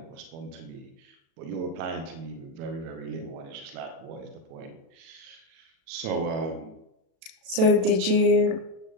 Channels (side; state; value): left; late; 36 ms